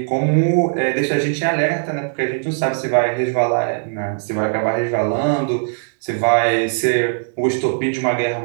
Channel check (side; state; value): left; silent; digital silence